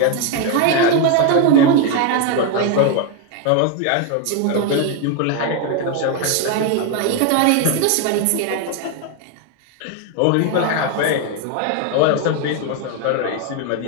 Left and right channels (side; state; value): both; different; correlation 0.01